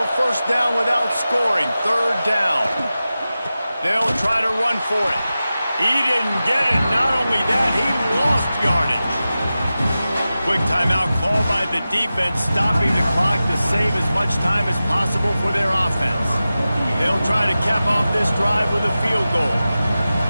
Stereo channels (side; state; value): both; inverted; correlation -0.94